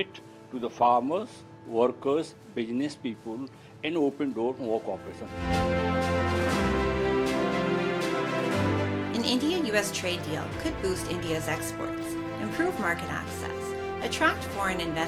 to the farmers, workers, business people, and open door for more cooperation. An India-US trade deal could boost India's exports, improve market access, attract foreign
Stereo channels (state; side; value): identical; both; correlation 1.00